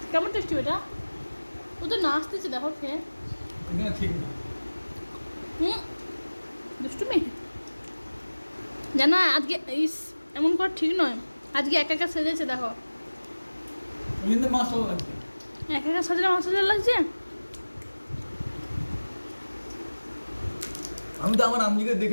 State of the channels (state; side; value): inverted; both; correlation -1.00